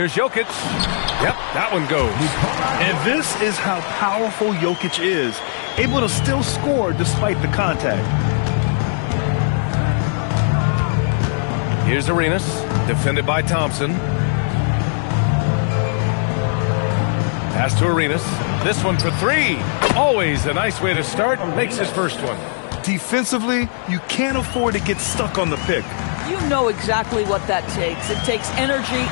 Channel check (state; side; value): silent; right; 63 dB below the other